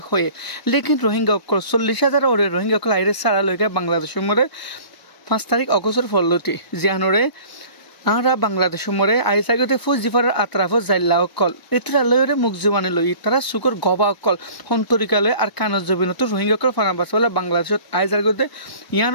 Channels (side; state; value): right; late; 1.0 ms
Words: হয়ে লেকিন রোহিঙ্গা অকল 40,000 ওরে রোহিঙ্গা কল আইরে সারা লইগা বাংলাদেশের মধ্যে 5 তারিখ অগস্টের ফলতি জিয়ানরে আরা বাংলাদেশের মরে আইসাগতে ফুজ জিফারের আতরাফ জাইল্লা অকল এতরা লয়রে মুখ জবানি লই তারা সুকর গবা অকল হন্তরিকালয় আর কানজ জবিনত রোহিঙ্গা কল ফানাবাসওয়ালা বাংলাদেশত আইসাগতে